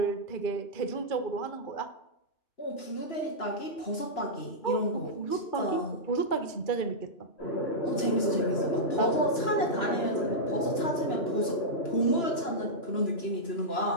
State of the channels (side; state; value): right; late; 2.9 ms